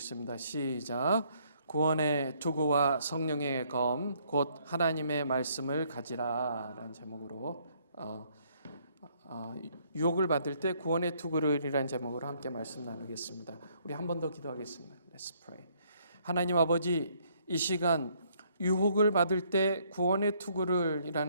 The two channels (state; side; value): inverted; both; correlation -0.67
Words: 시작. 구원의 투구와 성령의 검, 곧 하나님의 말씀을 가지라 라는 제목으로 유혹을 받을 때 구원의 투구를이라는 제목으로 함께 말씀 나누겠습니다. 우리 한 번 더 기도하겠습니다. Let's pray. 하나님 아버지, 이 시간 유혹을 받을 때 구원의